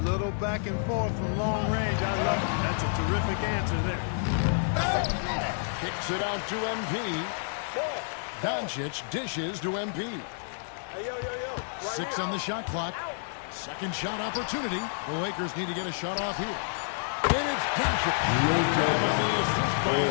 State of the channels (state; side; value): silent; right; 58 dB below the other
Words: little back and forth from long range. I love it. That's a terrific answer there. Kicks it out to MP. Doncic dishes to MP. Hey, yo. Right 6 here. on the shot clock. Second shot opportunity. The Lakers need to get a shot off here. And it's Doncic. Time on the assist by